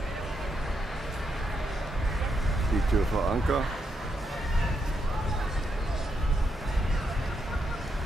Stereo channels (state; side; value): normal; both; correlation 0.81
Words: Die Tür vor Anker.